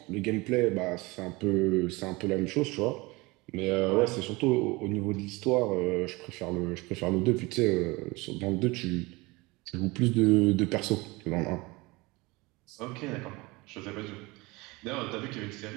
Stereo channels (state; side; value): quieter; left; 23.5 dB